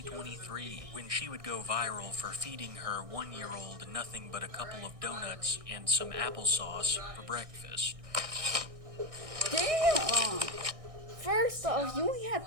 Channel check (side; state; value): left; late; 1.6 ms